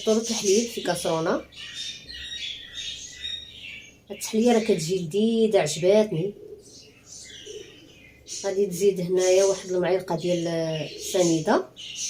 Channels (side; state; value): both; identical; correlation 1.00